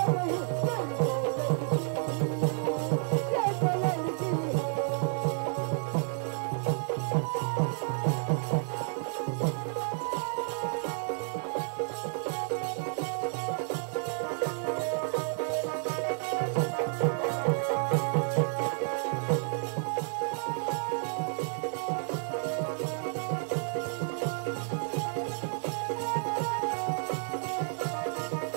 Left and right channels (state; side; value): silent; left; 57 dB below the other